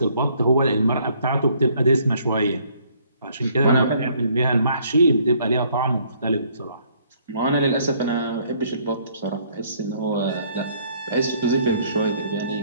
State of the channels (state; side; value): inverted; both; correlation -0.64